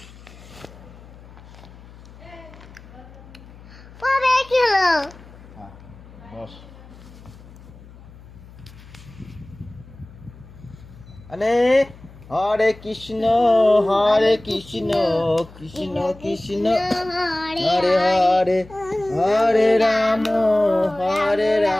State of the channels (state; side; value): noise; left; hum, 20 dB below the sound